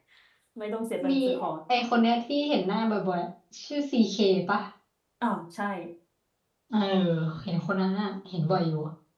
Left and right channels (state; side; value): identical; both; correlation 1.00